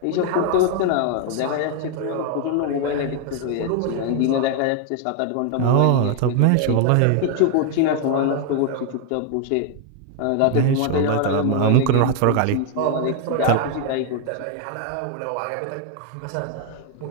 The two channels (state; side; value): different; both; correlation 0.00